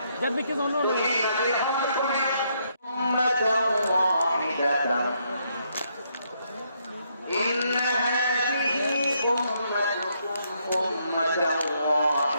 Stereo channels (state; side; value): inverted; both; correlation -0.74